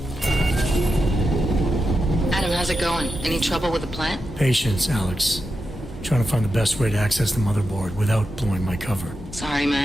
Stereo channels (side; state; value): both; normal; correlation 0.89